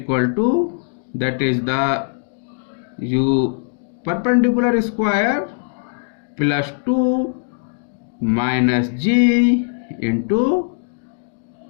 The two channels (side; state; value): right; silent; 66 dB below the other